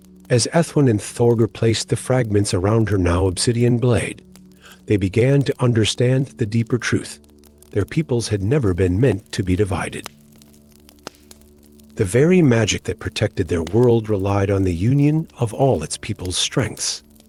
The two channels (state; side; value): identical; both; correlation 1.00